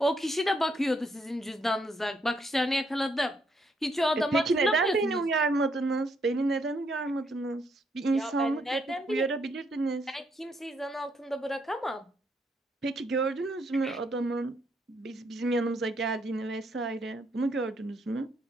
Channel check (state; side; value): normal; both; correlation 0.73